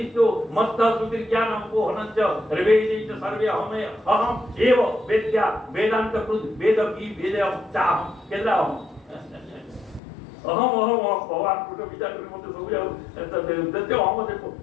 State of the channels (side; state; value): right; drops out; at 10.0 s